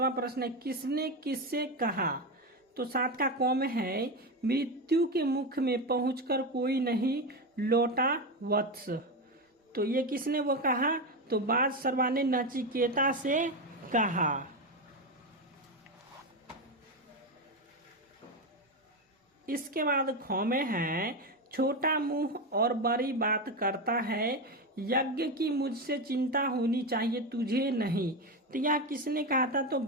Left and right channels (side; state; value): both; normal; correlation 0.14